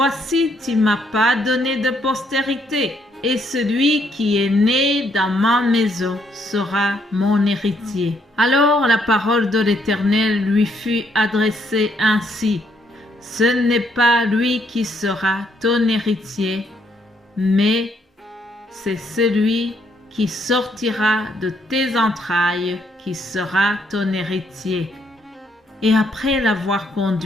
tu m'as pas donné de postérité, et celui qui est né dans ma maison sera mon héritier. Alors la parole de l'Éternel lui fut adressée ainsi: Ce n'est pas lui qui sera ton héritier, mais c'est celui qui sortira de tes entrailles qui sera ton héritier. Et après l'avoir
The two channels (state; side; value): normal; both; correlation 0.72